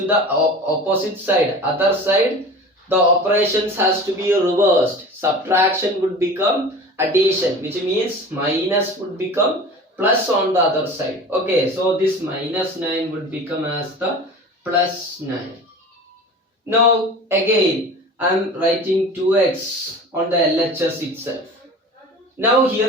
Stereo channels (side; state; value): both; normal; correlation 0.37